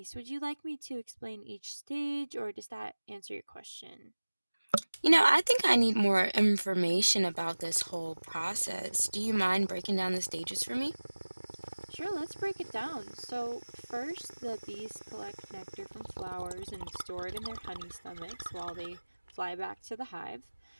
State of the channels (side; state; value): both; inverted; correlation -1.00